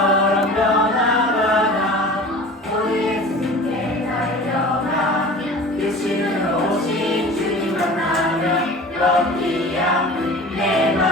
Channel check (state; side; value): normal; both; correlation 0.39